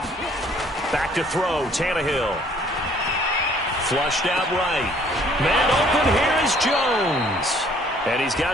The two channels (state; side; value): normal; both; correlation 0.59